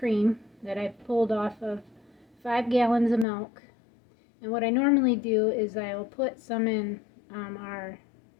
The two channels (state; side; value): drops out; right; at 3.2 s